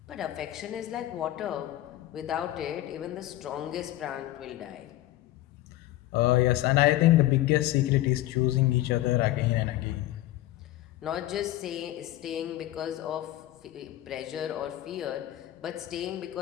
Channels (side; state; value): right; quieter; 15.2 dB